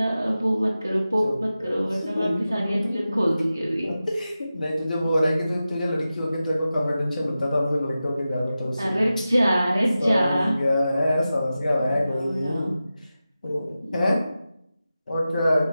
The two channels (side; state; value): both; inverted; correlation -0.93